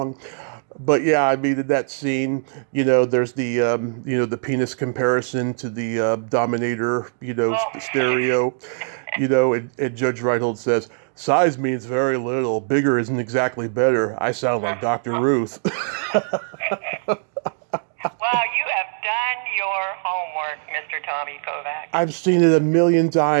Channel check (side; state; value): left; silent; digital silence